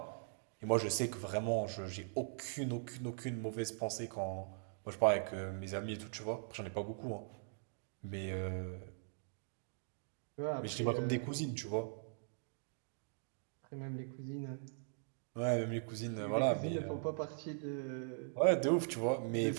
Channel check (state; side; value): silent; left; digital silence